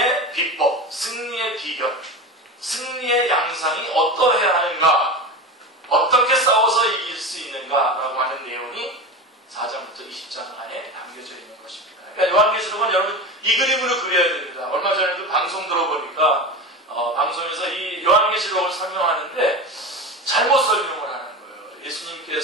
비법, 승리의 비결, 승리의 양상이 어떠해야 하는가, 어떻게 싸워서 이길 수 있는가라고 하는 내용이 4장부터 20장 안에 담겨져 있는 것입니다. 그러니까 요한계시록은 여러분 이 그림으로 그려야 됩니다. 얼마 전에도 방송 들어보니까 방송에서 이 요한계시록을 설명하는데 잘못 설명을 하는 거예요.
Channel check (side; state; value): both; normal; correlation 0.26